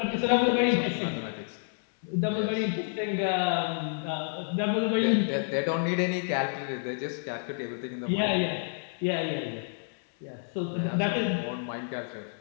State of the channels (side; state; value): right; silent; digital silence